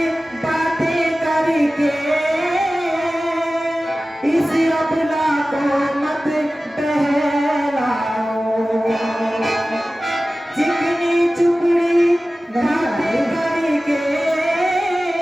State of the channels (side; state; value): both; normal; correlation 0.96